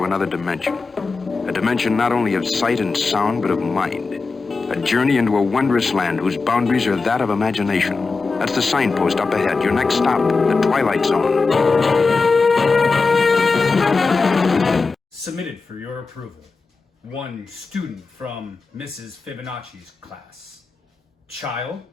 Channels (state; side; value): quieter; right; 4.2 dB